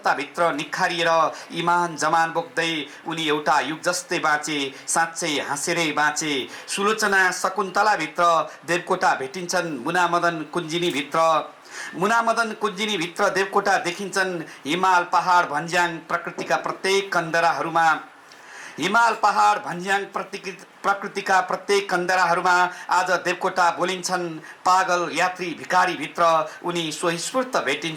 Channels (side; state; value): both; identical; correlation 1.00